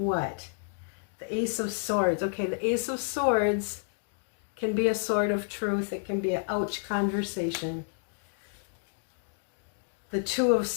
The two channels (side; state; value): right; silent; digital silence